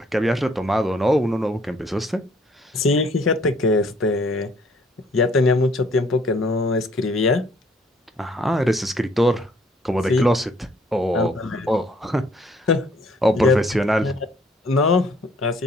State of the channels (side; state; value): both; normal; correlation 0.62